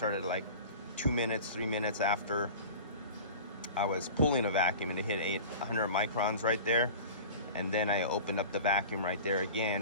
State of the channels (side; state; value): both; inverted; correlation -0.38